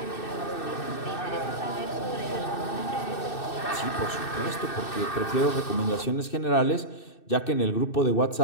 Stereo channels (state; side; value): late; right; 2.6 ms